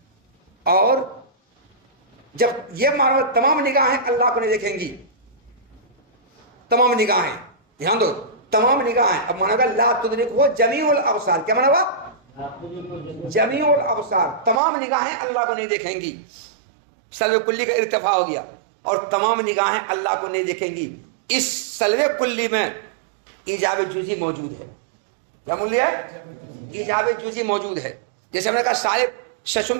اور جب یہ مانا تمام نگاہیں اللہ کو نہیں دیکھیں گی، تمام نگاہیں، دھیان دو، تمام نگاہیں. اب مانا کہ لا تدرک ہو جمیع الابصار. کیا مانا ہوا؟ جمیع الابصار، تمام نگاہیں اللہ کو نہیں دیکھیں گی. سلب کلی کا ارتفاع ہو گیا اور تمام نگاہیں اللہ کو نہیں دیکھیں گی. اس سلب کلی میں ایجاب جزئی موجود ہے. کیا موجود ہے؟ ایجاب جزئی موجود ہے. جیسے ہم نے کہا صاحب ششم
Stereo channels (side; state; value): left; drops out; at 14.6 s